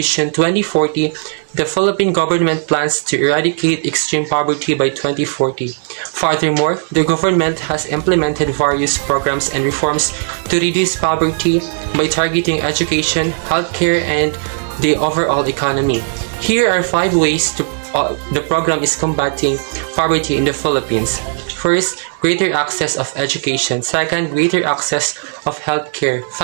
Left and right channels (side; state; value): left; silent; 66 dB below the other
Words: 2040, the Philippine government plans to eradicate extreme poverty by 2040. Furthermore, the government has implemented various programs and reforms to reduce poverty by targeting education, healthcare, and the overall economy. Here are 5 ways the program is combating poverty in the Philippines. First, greater access of education. Second, greater access of healthcare,